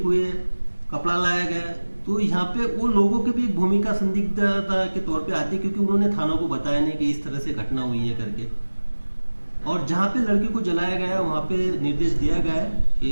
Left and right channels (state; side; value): inverted; both; correlation -1.00